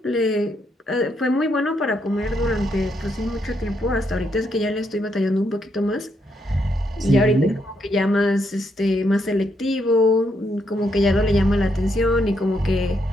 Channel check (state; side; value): normal; both; correlation 0.77